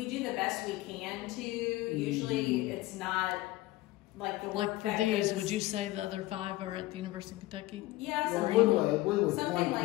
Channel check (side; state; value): right; quieter; 18.4 dB